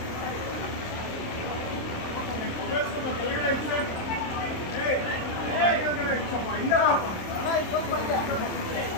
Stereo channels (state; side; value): late; right; 26 ms